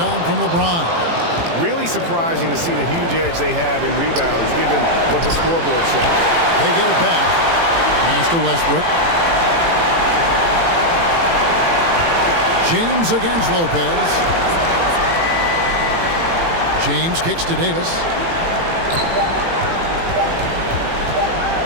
from LeBron. Really surprising to see the huge edge they have in rebounds, given what the scoreboard says. They get it back. Pass to Westbrook. James against Lopez. James kicks to Davis.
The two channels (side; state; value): left; late; 18 ms